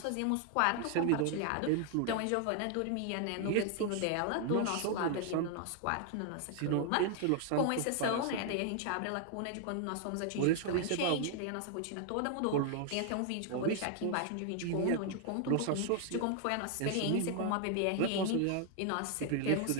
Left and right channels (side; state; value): both; different; correlation 0.00